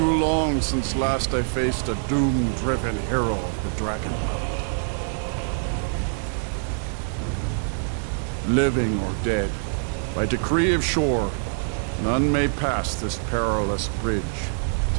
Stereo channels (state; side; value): silent; left; 62 dB below the other